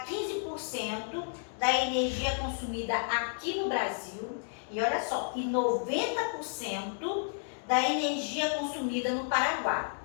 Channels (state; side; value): silent; right; digital silence